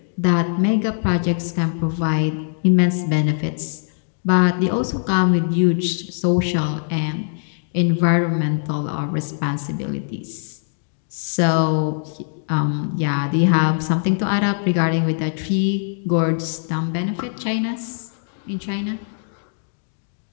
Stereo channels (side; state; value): right; silent; digital silence